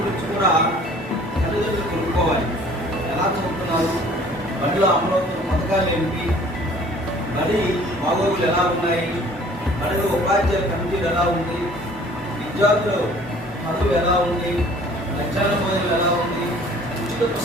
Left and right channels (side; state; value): both; normal; correlation 0.52